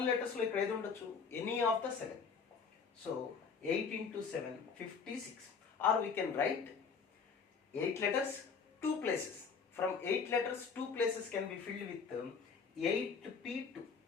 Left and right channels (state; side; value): quieter; right; 5.6 dB